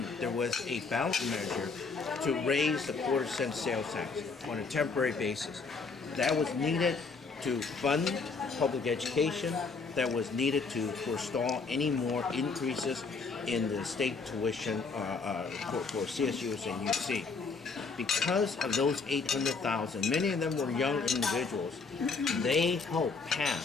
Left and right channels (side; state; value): right; quieter; 4.6 dB